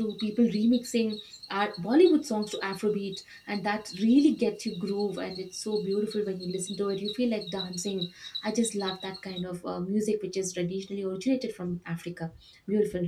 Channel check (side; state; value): both; identical; correlation 1.00